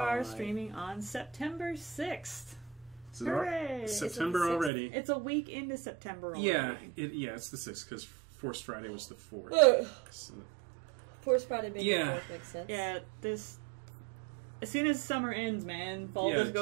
streaming on September 6th. So Hooray! September already. It's a week into September already. Yeah, it's the 6th because Forced Friday was the 4th. So, Forced Friday being Yeah. the 4th makes sense. Yeah, this... As soon as summer ends, man, fall Yeah, just it's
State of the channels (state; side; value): drops out; left; at 4.7 s